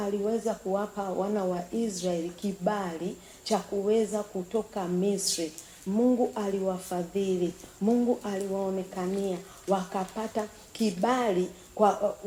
kuwapa wana wa Israeli kibali cha kuweza kutoka Misri. Mungu aliwafadhili, Mungu aliwaonekania, wakapata kibali. Kwa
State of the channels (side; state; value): both; identical; correlation 1.00